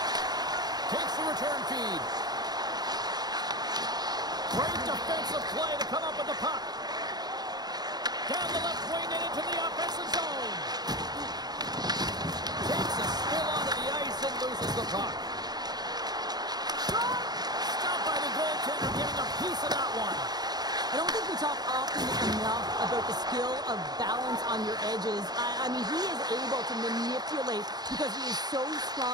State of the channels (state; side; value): late; left; 0.19 ms